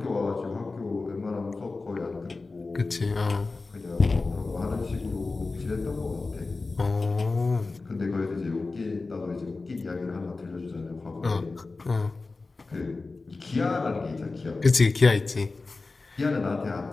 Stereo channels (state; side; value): quieter; right; 3.7 dB